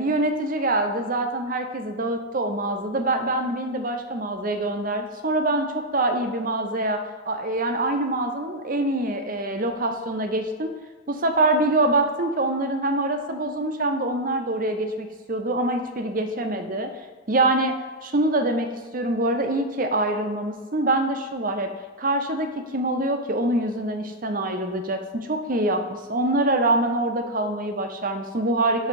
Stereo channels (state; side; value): normal; both; correlation -0.03